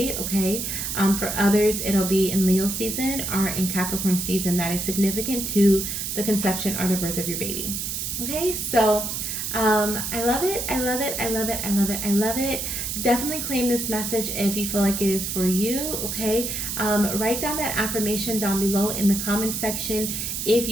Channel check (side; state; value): right; noise; hiss, 3 dB below the sound